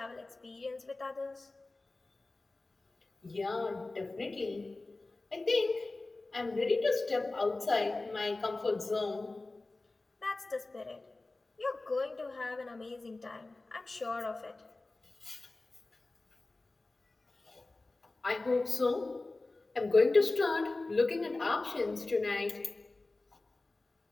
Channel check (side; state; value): right; quieter; 3.2 dB